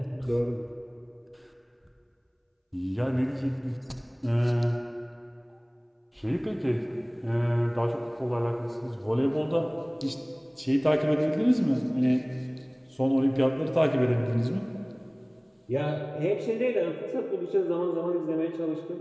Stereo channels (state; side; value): identical; both; correlation 1.00